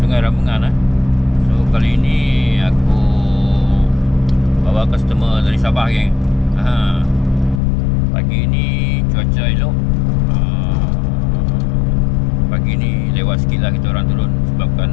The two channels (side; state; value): right; drops out; at 7.6 s